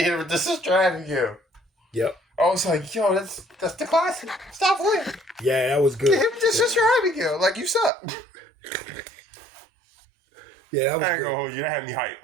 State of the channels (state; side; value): drops out; left; at 7.9 s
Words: hit it with the Sister Abigail. Yep. I was like, yo, that's the classic. Stop playing. Yeah, that was good. Give him the Sister Abigail. Like, you suck. Yeah, that was I ain't gonna hold you. That had me